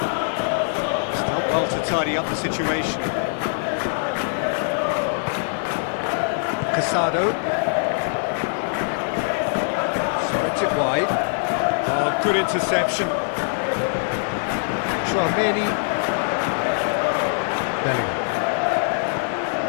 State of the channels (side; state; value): right; silent; digital silence